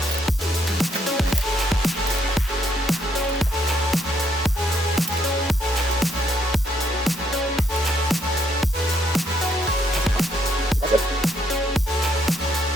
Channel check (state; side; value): normal; both; correlation 0.72